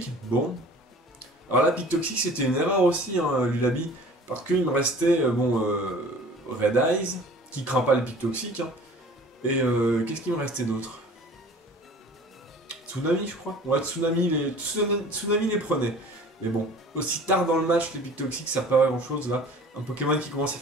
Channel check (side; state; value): both; normal; correlation 0.46